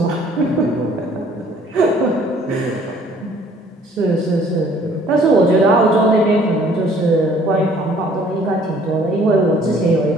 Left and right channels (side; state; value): both; normal; correlation 0.57